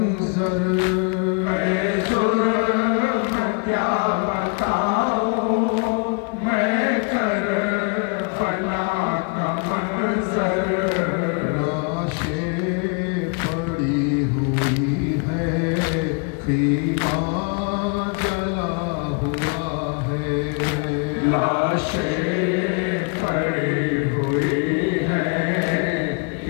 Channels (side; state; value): right; quieter; 34.3 dB